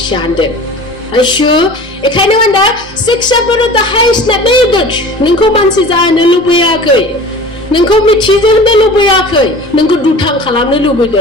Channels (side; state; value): both; normal; correlation 0.40